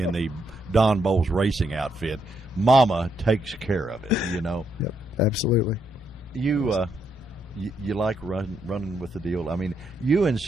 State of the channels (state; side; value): normal; both; correlation 0.77